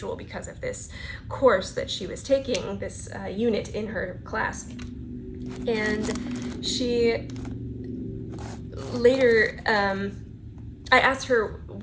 because of this course that she was taking, this unit in her class. And she later, I asked her,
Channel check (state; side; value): identical; both; correlation 1.00